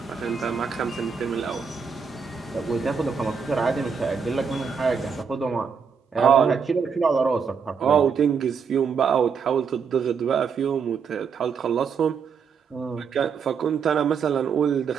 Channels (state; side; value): quieter; left; 6.1 dB